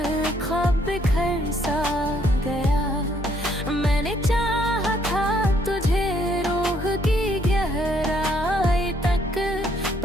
ख्वाब बिखर सा गया। मैंने चाहा था तुझे रूह की गहराई तक,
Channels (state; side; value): normal; both; correlation 0.68